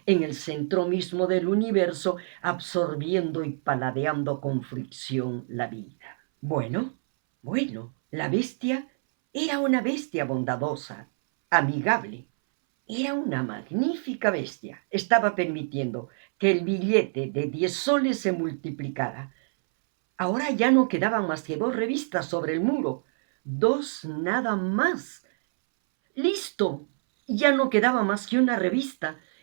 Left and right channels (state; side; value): silent; left; 61 dB below the other